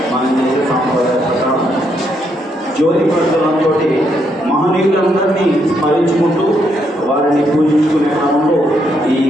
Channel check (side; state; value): both; normal; correlation 0.76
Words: మనం చేసే సాంప్రదాయ ప్రకారం జ్యోతి ప్రజ్వలంతో మహనీయులందరినీ స్మరించుకుంటూ వారిని పూజించుకునే క్రమంలో ఈ